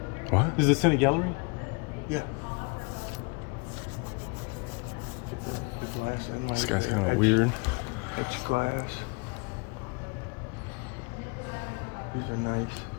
What? Is the Senate gallery? Yeah. Get the glass in. This guy's kind of weird. It's glass. These are nice.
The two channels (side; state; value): right; quieter; 30.7 dB